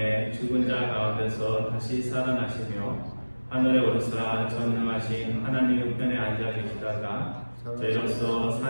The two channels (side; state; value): both; inverted; correlation -1.00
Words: 죽은 자 가운데서 다시 살아나시며 하늘에 오르사 전능하신 하나님 우편에 앉아 계시다가 저희로서